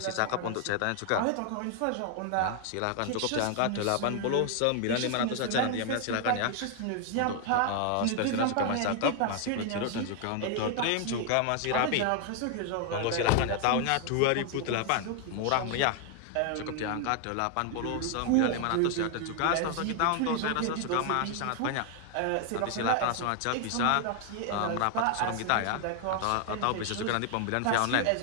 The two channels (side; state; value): both; different; correlation 0.00